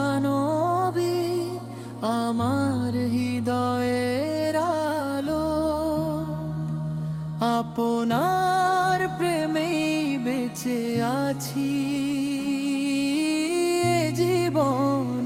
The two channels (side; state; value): both; identical; correlation 1.00